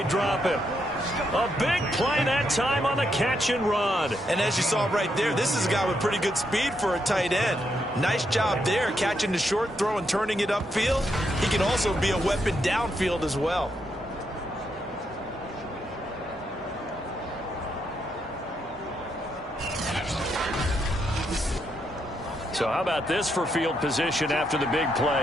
drop him. A big play that time on the catch and run. And as you saw right there, this is a guy with pretty good speed for a tight end. Nice job there, catching the short throw and turning it upfield. He can also be a weapon downfield as well. So how about this for field position after the big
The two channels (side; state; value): both; normal; correlation 0.79